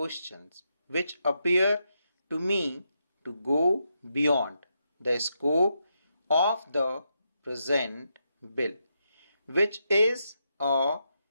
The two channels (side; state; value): both; inverted; correlation -0.83